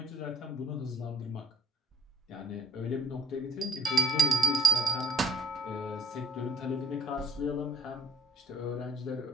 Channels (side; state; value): both; normal; correlation 0.61